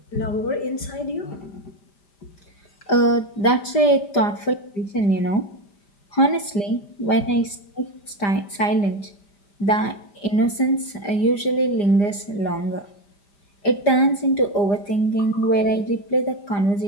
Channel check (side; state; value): right; late; 5.0 ms